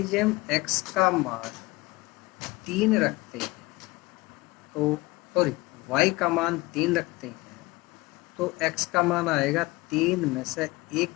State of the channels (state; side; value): quieter; right; 22.2 dB